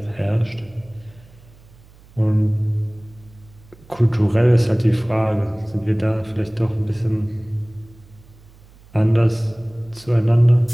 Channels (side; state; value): right; noise; hum, 25 dB below the sound